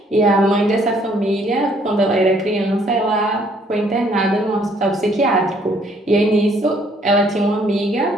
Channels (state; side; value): normal; both; correlation 0.64